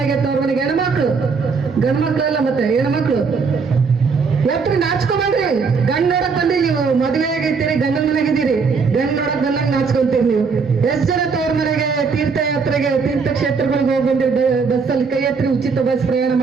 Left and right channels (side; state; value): left; quieter; 5.1 dB